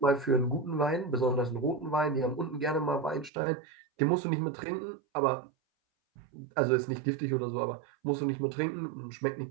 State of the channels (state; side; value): drops out; left; at 3.3 s